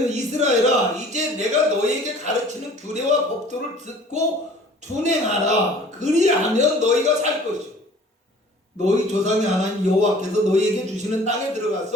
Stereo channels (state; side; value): normal; both; correlation 0.49